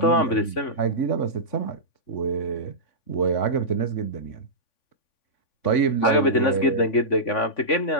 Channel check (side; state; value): right; late; 3.5 ms